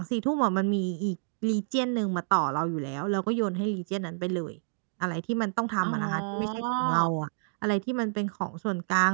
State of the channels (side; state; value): left; silent; digital silence